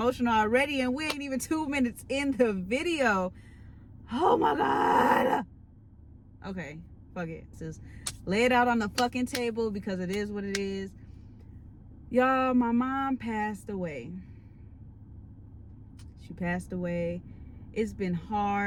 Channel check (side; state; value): both; identical; correlation 1.00